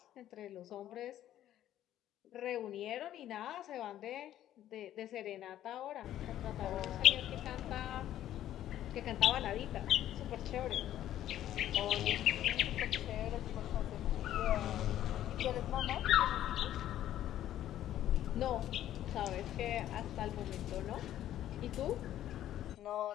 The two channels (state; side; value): quieter; right; 12.3 dB